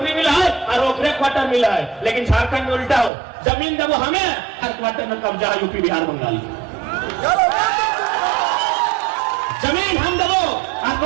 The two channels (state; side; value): drops out; left; at 3.1 s